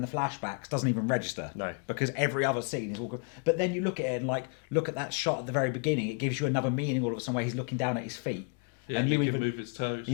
the flashbacks doesn't even register. No, because every other scene is walking. But then you look at it and look at that shot at the very beginning. It gives you another meaning all of a sudden where he's looking down at his feet. Yeah, and he can move his toes.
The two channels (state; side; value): quieter; right; 39.2 dB